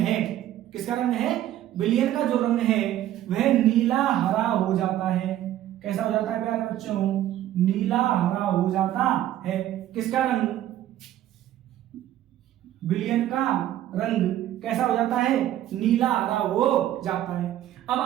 किसका रंग है, विलयन का जो रंग है वह नीला हरा हो जाता है। कैसा हो जाता है प्यारे बच्चों, नीला हरा हो जाता है। किसका रंग, विलयन का रंग कैसा हो जाता है, नीला हरा हो जाता है। अब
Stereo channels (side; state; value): left; quieter; 12.8 dB